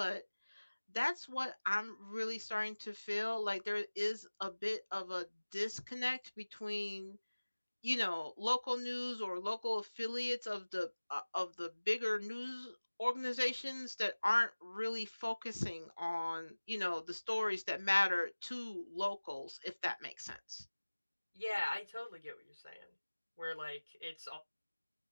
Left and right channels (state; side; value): inverted; both; correlation -1.00